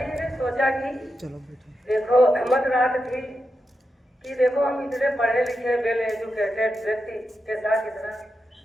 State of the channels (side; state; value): both; normal; correlation 0.87